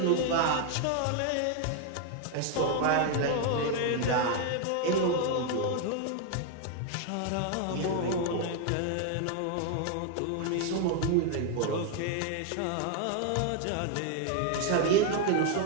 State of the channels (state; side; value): different; both; correlation 0.00